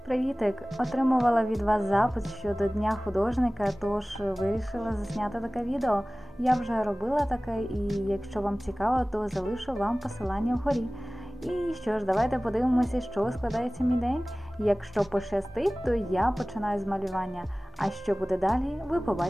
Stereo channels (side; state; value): both; normal; correlation 0.98